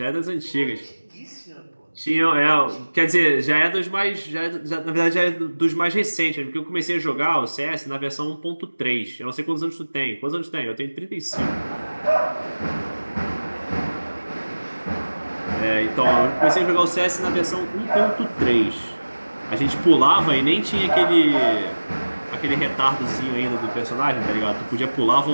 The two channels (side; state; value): both; inverted; correlation -1.00